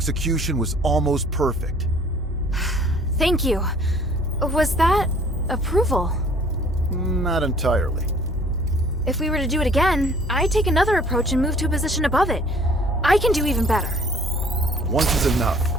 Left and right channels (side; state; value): both; normal; correlation 0.54